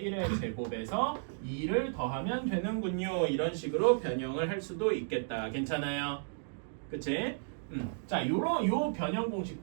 1의 제곱에서 2를 더하면 되는군요. 이런 식으로 변형을 할 수도 있겠다. 괜찮아요? 그치? 자, 요 변형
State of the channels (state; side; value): silent; left; digital silence